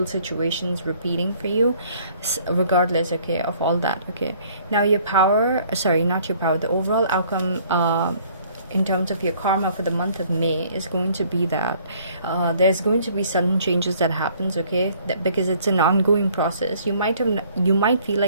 situations repeating for you, regardless, okay, of all that, okay? Now your power, sorry, not your power, the overall outcome in terms of your karma for the month of May is going to be that there's going to be sudden changes that happens, okay? That, because it's an ongoing process, you might feel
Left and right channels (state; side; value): inverted; both; correlation -0.59